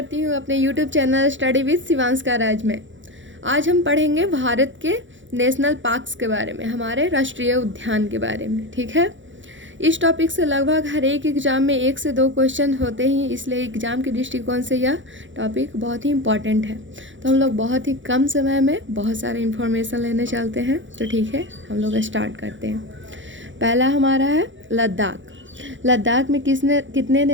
हूँ अपने यूट्यूब चैनल स्टडी विद शिवांशका राज में। आज हम पढ़ेंगे भारत के नेशनल पार्क्स के बारे में, हमारे राष्ट्रीय उद्यान के बारे में। ठीक है, इस टॉपिक से लगभग हर एक एग्ज़ाम में 1 से 2 क्वेश्चन होते ही, इसलिए एग्ज़ाम के दृष्टिकोण से यह टॉपिक बहुत ही इम्पॉर्टेंट है। तो हम लोग बहुत ही कम समय में बहुत सारे इन्फॉर्मेशन लेने चलते हैं। तो ठीक है, हम लोग स्टार्ट करते हैं। पहला हमारा है लद्दाख। लद्दाख में कितने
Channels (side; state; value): left; late; 0.55 ms